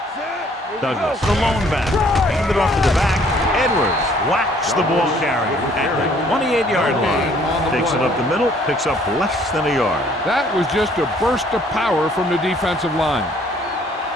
Douglas, the lone back. Hand it off to the back. Edwards whacks the ball carrier at the 28-yard line. Takes it up the middle, picks up less than a yard. That was just a burst of power from the defensive line.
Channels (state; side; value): normal; both; correlation 0.60